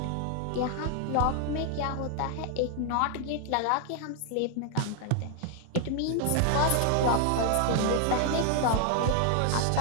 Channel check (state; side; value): different; both; correlation 0.00